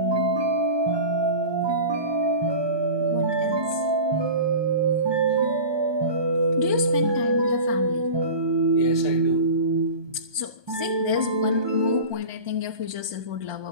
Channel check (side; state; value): left; late; 1.2 ms